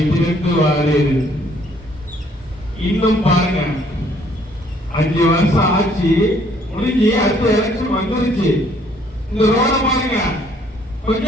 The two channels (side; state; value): both; normal; correlation 0.63